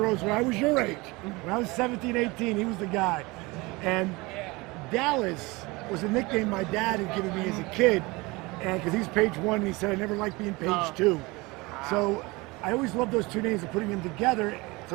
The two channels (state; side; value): quieter; left; 23.8 dB